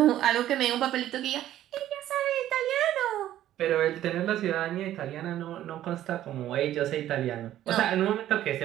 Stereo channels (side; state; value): left; quieter; 12.7 dB